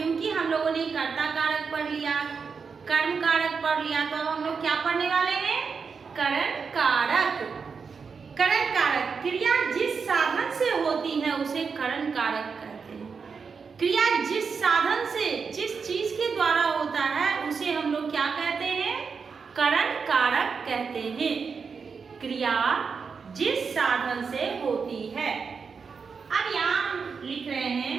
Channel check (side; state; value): left; quieter; 5.5 dB